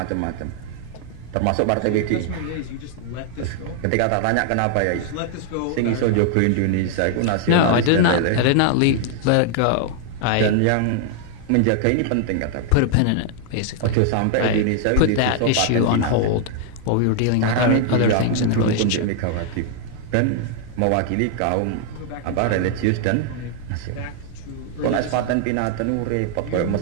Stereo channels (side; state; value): both; different; correlation 0.00